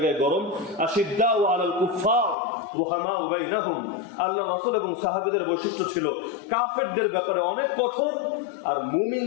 গরম। আশিদ্দাউ আলাল কুফার রুহামাউ বাইনাহুম, আল্লাহ রাসূল এবং সাহাবীদের বৈশিষ্ট্য ছিল কাফেরদের ব্যাপারে অনেক কঠোর, আর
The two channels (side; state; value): right; drops out; at 2.4 s